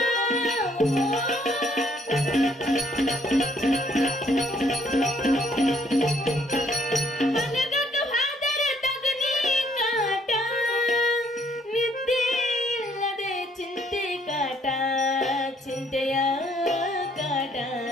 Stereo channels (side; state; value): both; normal; correlation 0.66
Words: ಮಲಗಕ್ಕ ಹಾದರ ತಗನಿ ಕಾಟ ನಿದ್ದೆ ಇಲ್ಲದೆ ಚಿಂತೆ ಕಾಟ ಚಿಂತೆಯ ಕಾಟ